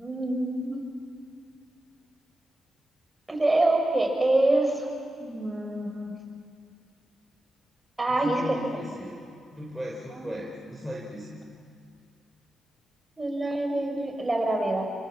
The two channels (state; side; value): normal; both; correlation 0.92